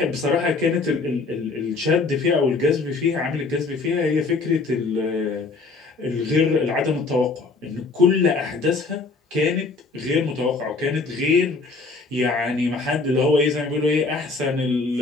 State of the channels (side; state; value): right; quieter; 4.0 dB